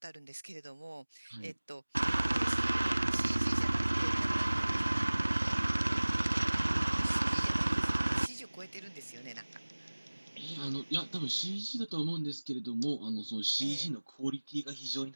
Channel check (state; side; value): inverted; both; correlation -1.00